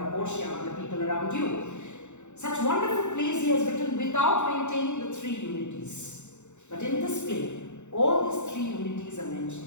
a Portia among the people around you. Such wonderful plays he has written without maintaining the three unities. But in this play, all these three unities are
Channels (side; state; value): right; late; 0.83 ms